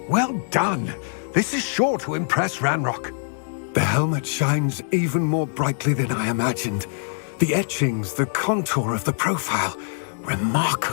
Well done. This is sure to impress Ranrock. The helmet shines even more brightly than I imagined. The etchings, the contour of the profile.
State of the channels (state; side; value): silent; right; digital silence